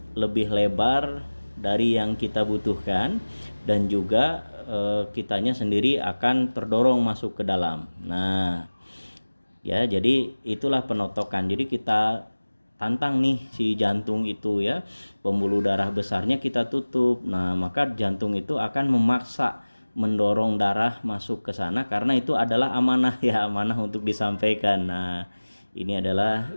lebih lebar dari yang kita butuhkan, dan juga kitanya sendiri akan terdorong masuk ke dalam. Nah, ya, jadi itulah penotokan. Jadi kita tantang nih si jantung itu ya, pembuluh darah besarnya kita tutup. Nah, maka jantung itu akan memaksa mendorong darah masuk ke sana karena itu adalah amanah ya, amanah untuk disampaikan. Nah, ini adalah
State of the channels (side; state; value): both; inverted; correlation -1.00